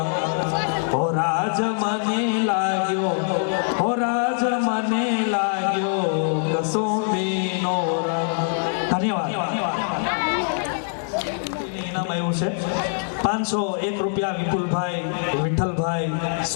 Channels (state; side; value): silent; right; digital silence